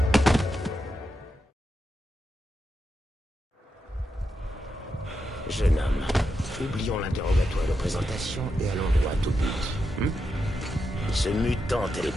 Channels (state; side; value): normal; both; correlation 0.86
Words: Jeune homme, oublions l'interrogatoire de présentation et allons droit au but. Ce mutant